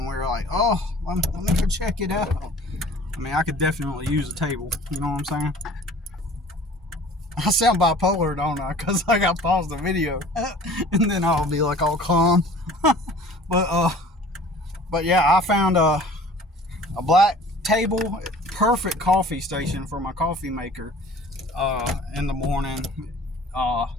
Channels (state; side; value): normal; both; correlation 0.47